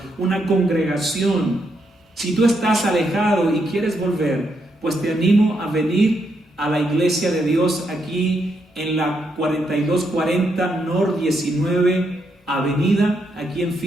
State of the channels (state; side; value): normal; both; correlation 0.79